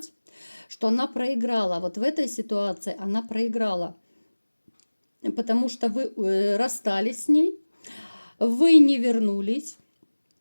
что она проиграла. Вот в этой ситуации она проиграла. Потому что вы расстались с ней, вы не вернулись,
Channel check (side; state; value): both; inverted; correlation -1.00